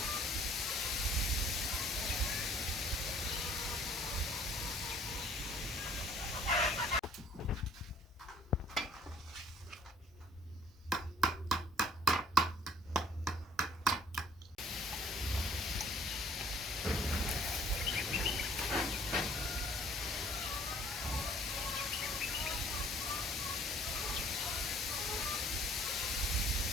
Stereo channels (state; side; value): normal; both; correlation 0.57